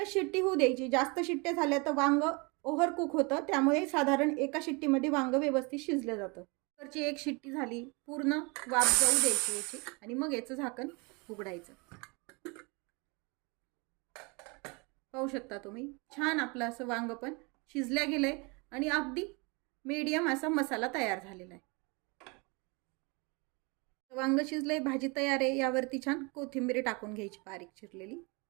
शिट्टी होऊ द्यायची. जास्त शिट्ट्या झाल्या तर वांग ओव्हर कुक होतं, त्यामुळे साधारण एका शिट्टीमध्ये वांग व्यवस्थित शिजलं जातं. कुकरची 1 शिट्टी झाली, पूर्ण वाफ जाऊ द्यायची याची, आणि मग याचं झाकण उघडायचं. पाहू शकता तुम्ही, छान आपलं असं वांग पण शिजल्या गेलंय आणि अगदी मीडियम असा मसाला तयार झालेला आहे. वांग शिजलंय, भाजी तयार आहे. यावरती छान कोथिंबीर टाकून घ्यायची बारीक चिरलेली.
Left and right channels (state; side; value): quieter; left; 29.4 dB